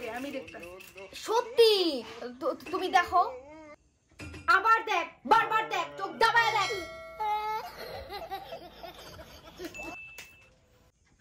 দে, আমি দেখতাম। সত্যি তুমি দেখো, আবার দেখ, বারবার দেখ, চোখ দাবায় দেখ।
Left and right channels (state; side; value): identical; both; correlation 1.00